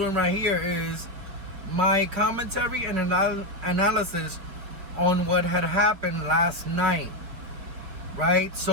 right here is my commentary and analysis on what had happened last night, right?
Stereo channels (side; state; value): left; late; 4.8 ms